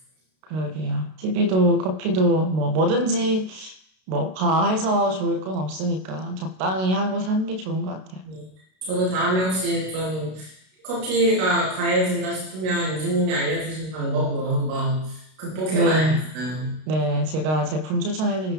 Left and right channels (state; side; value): late; left; 32 ms